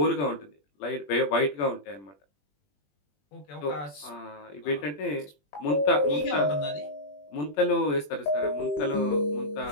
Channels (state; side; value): late; right; 20 ms